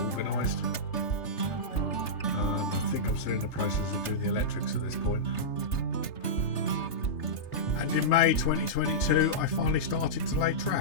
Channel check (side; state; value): right; late; 3.3 ms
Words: I think I'm still in the process of doing the electrics at this point. And in May 2022 I finally started to lay